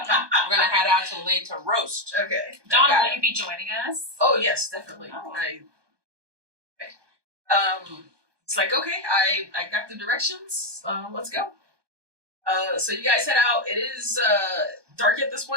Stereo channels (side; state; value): left; late; 1.2 ms